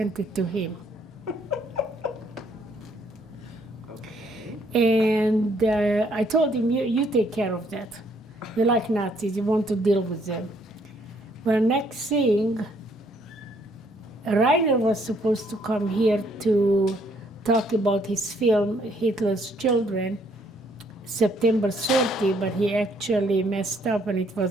it to him. And I told him, you take care of that. You like Nazis, you want to deal with them. Well, next thing, Rainer was supposed to come here to talk about his film, Hitler's Children, September 30, but he actually messed up and it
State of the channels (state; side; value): normal; both; correlation 0.67